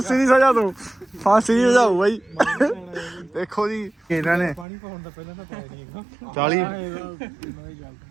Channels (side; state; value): left; drops out; at 4.7 s